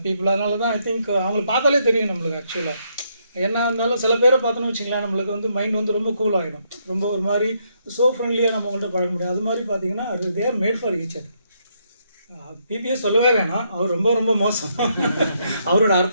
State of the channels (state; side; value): inverted; both; correlation -0.75